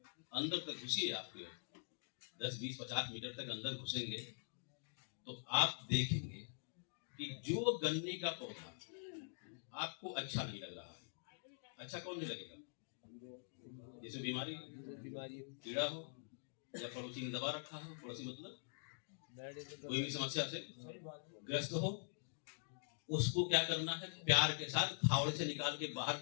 अंदर तक घुसिए। आपके 10-20-50 मीटर तक अंदर घुसेंगे तो आप देखेंगे कि जो गन्ने का पौधा आपको अच्छा नहीं लग रहा है, अच्छा कौन नहीं लगेगा? जैसे बीमारी कीड़ा हो या पड़ोसी ने दबा रखा हो, पड़ोसी मतलब कोई भी समस्या से ग्रस्त हो, उसको क्या करना है? प्यार के साथ फावड़े से निकाल के बाहर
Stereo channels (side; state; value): right; silent; digital silence